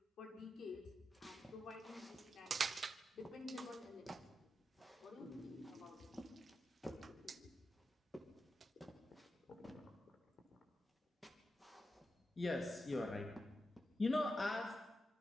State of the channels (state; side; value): normal; both; correlation 0.88